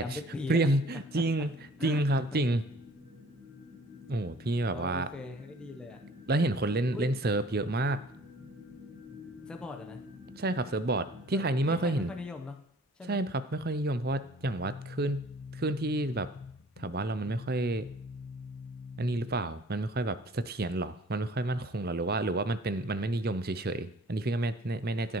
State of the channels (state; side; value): normal; both; correlation 0.52